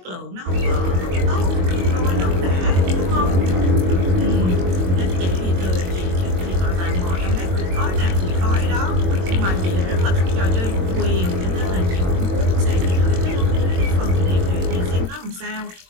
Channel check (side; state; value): left; late; 22 ms